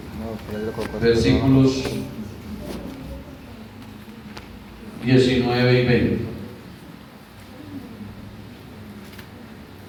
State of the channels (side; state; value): both; identical; correlation 1.00